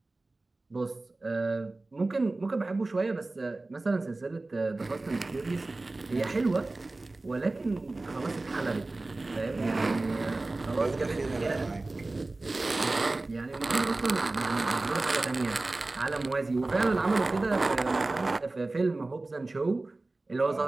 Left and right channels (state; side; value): quieter; left; 3.1 dB